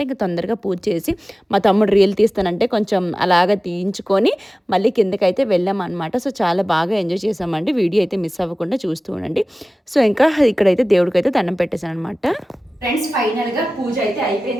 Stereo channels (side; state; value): both; normal; correlation 0.97